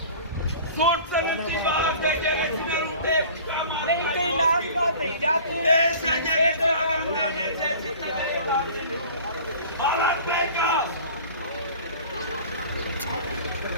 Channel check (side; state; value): both; inverted; correlation -0.43